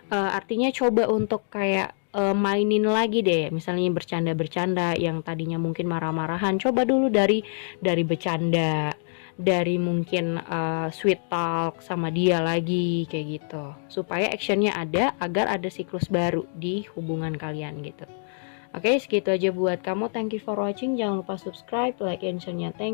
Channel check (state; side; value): silent; right; digital silence